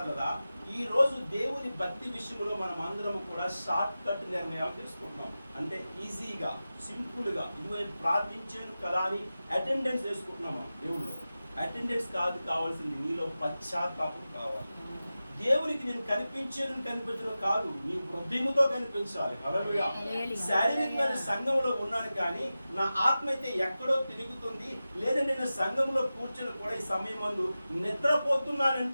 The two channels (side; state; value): both; inverted; correlation -0.94